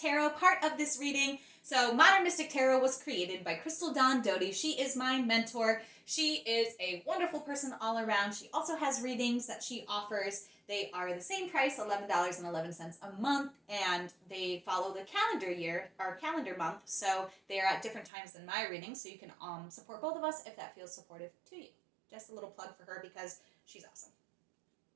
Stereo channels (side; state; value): left; drops out; at 18.1 s